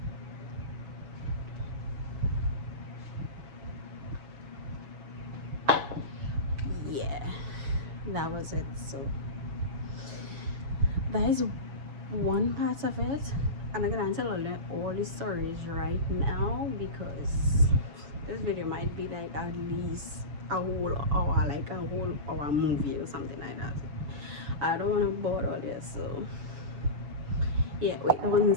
Yeah, that was it. So that is one part of it, and I'm gonna tell all the stories right now because this video might be like at least a whole hour, like a whole hour movie or something like that. I don't want to bore all this, so yeah, wait 1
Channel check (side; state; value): left; late; 7.0 ms